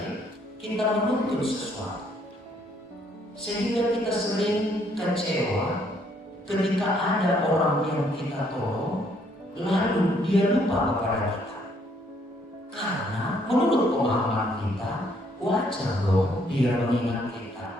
kita menuntut sesuatu, sehingga kita sering kecewa ketika ada orang yang kita tolong lalu dia lupa kepada kita. Karena menurut pemahaman kita, wajar dong dia mengingat kita,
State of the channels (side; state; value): both; normal; correlation 0.67